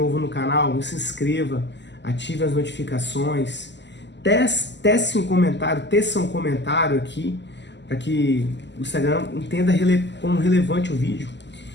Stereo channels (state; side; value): late; right; 0.51 ms